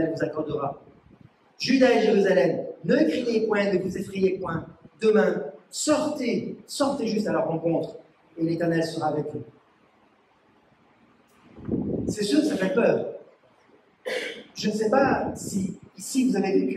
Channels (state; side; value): identical; both; correlation 1.00